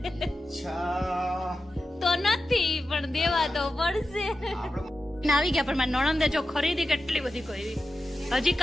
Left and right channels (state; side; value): normal; both; correlation 0.92